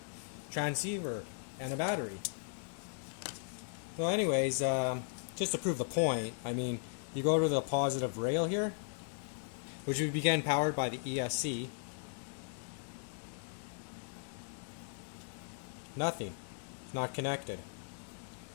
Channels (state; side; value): silent; right; digital silence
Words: transceiver and a battery. So anyways, just to prove the point, I mean, you go to the positive rail here, which would begin powered by the ESC. Nothing. It's not connected.